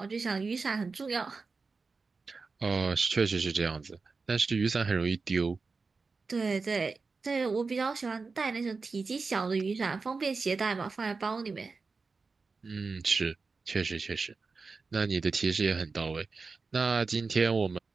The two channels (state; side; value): quieter; left; 4.4 dB